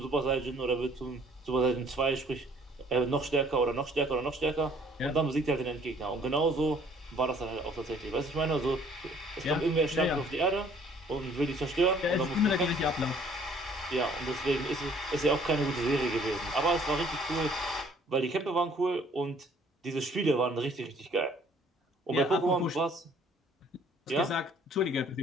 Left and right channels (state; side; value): normal; both; correlation 0.58